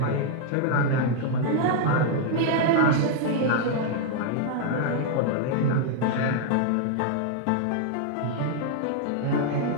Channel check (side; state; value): both; different; correlation 0.00